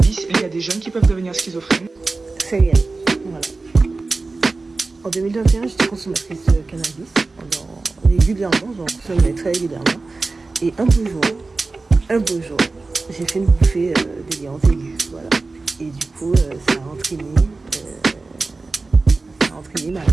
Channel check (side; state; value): left; quieter; 3.7 dB